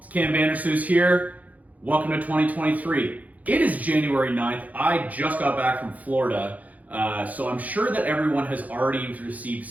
Cam Vandersloot here. Welcome to 2023. It is January 9th. I just got back from Florida, so I'm sure that everyone has already received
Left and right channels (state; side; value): late; left; 0.076 ms